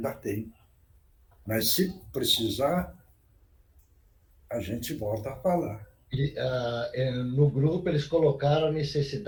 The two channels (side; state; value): both; identical; correlation 1.00